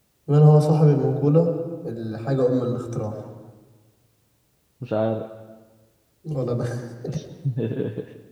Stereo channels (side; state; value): both; identical; correlation 1.00